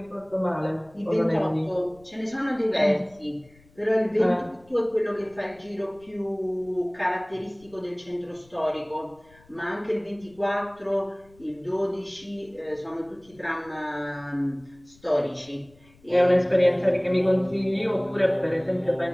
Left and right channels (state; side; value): noise; left; rumble, 28 dB below the sound